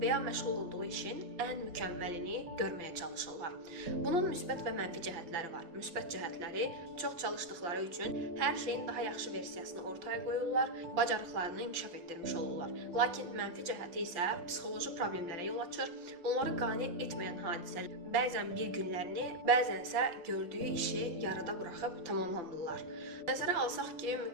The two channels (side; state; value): left; late; 5.8 ms